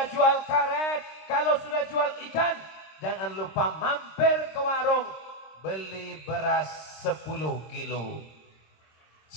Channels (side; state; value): right; late; 26 ms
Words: jual karet, kalau sudah jual ikan, jangan lupa mampir ke warung, beli beras 10 kilo.